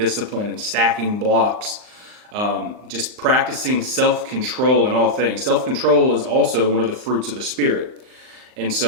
and stacking blocks, just practicing self-control in all things. Self-control is also one of the fruits of the Spirit. And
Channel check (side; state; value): left; late; 39 ms